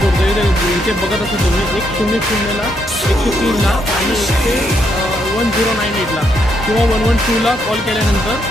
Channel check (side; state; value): both; normal; correlation 0.76